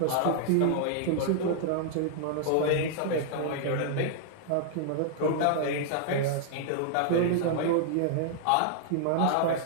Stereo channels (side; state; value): both; different; correlation -0.01